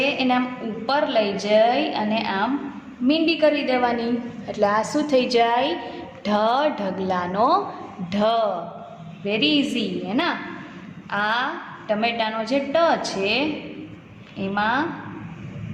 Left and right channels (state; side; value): identical; both; correlation 1.00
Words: એને આમ ઉપર લઈ જઈ અને આમ મીંડી કરી દેવાની, એટલે આ શું થઈ જાય? ઢ ઢગલાનો ઢ. વેરી ઇઝી હે ના? આ ટમેટાનો જે ટ છે એમાં